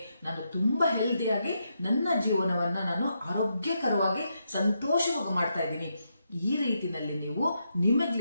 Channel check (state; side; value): inverted; both; correlation -0.82